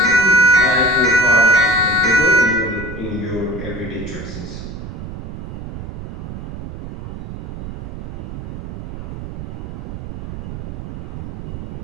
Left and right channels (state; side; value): noise; right; rumble, 8 dB below the sound